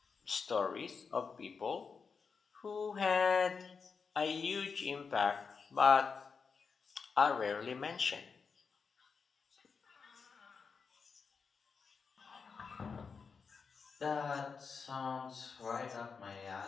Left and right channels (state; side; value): quieter; right; 5.4 dB